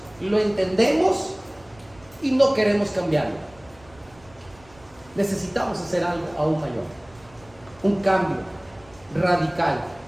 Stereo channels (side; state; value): right; noise; rumble, 26 dB below the sound